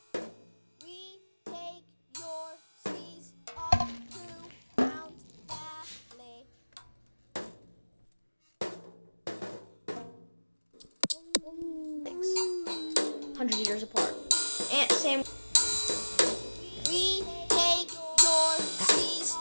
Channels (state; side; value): inverted; both; correlation -1.00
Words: We take your seas up to Mount Valley. thanks 100 years apart. And same. We take your seas